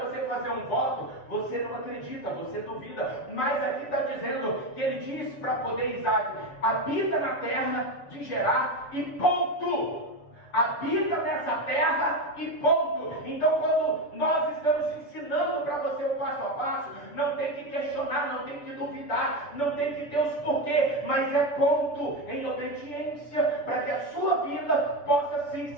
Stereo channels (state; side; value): late; right; 6.9 ms